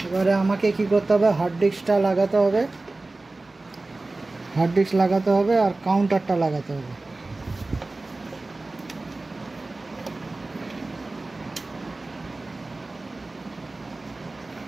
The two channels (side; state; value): left; quieter; 3.1 dB